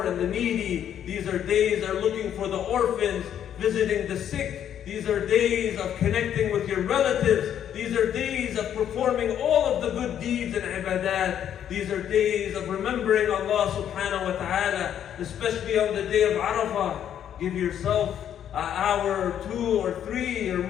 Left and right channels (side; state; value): right; quieter; 9.8 dB